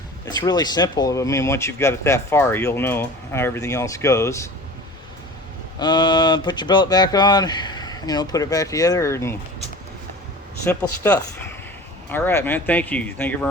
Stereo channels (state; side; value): normal; both; correlation 0.38